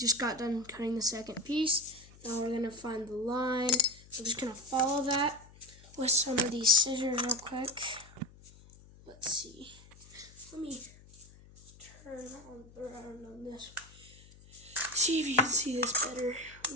got done cutting the second piece. Now we're gonna find the line. We're just gonna follow that with some of these scissors real quick. Let's see. Let me turn around on this. See if you can see this better.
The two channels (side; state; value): left; noise; hum, 22 dB below the sound